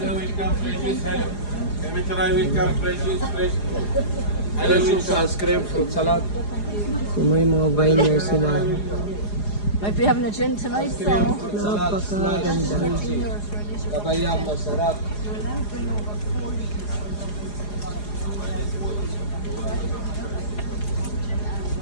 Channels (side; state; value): right; late; 4.9 ms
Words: welcome, Francis. Hello. Can we try welcome, Francis? Fresh. Hello, ice cream, fruit salad. So may mga vineyards sila. Might be having a gin tonight, so. Napakaganda. Kabayang masarap.